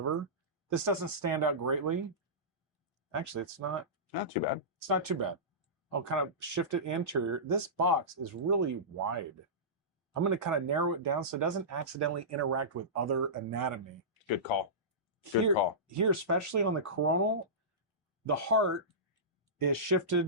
This doesn't stand out greatly. Actually, it's not too bad. It's not too bad. I'll kind of shift it anterior. This box is really wide. I'm going to kind of narrow it down so it doesn't accidentally interact with other anatomy. Good call. Good call. Here, especially on the coronal, the heart is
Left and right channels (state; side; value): normal; both; correlation -0.19